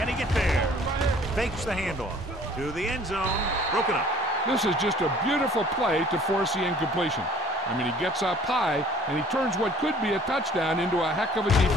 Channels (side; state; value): both; normal; correlation 0.53